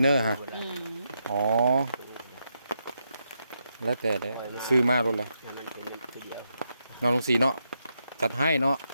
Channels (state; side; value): inverted; both; correlation -0.83